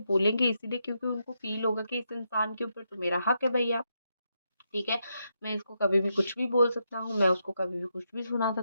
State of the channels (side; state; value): both; inverted; correlation -0.82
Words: बोलेंगे इसीलिए क्योंकि उनको फ़ील होगा कि इस इंसान के ऊपर तो मेरा हक है भैया, ठीक है? मैं इसको कभी भी कुछ भी बोल सकता हूँ, मैं उसको कभी भी कुछ भी सुना